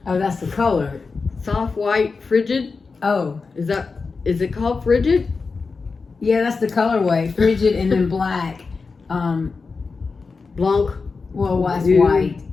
Oh, that's the color. Soft white frigid. Oh, is it called frigid? Yeah, that's the colorway. Frigid and then black. Blanc. Well, that's white.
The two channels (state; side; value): quieter; right; 4.5 dB